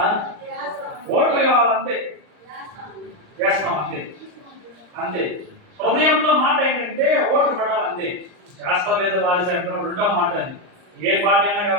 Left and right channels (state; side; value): late; left; 39 ms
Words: ఓట్లు కావాలంతే, చేస్తాం అంతే అంతే. హృదయంలో మాట ఏంటంటే ఓట్లు పడాలంతే. చేస్తా లేదా వారి అంటాం రెండో మాట. అది ఏ పార్టీ అయినా